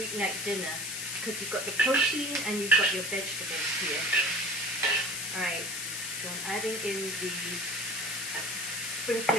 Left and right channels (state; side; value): noise; left; hiss, 4 dB below the sound